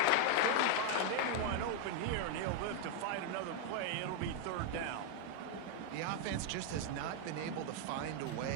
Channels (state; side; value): different; both; correlation 0.01